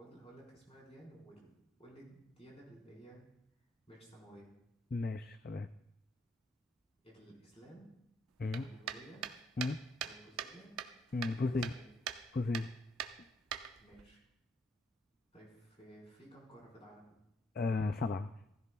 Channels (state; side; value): normal; both; correlation 0.72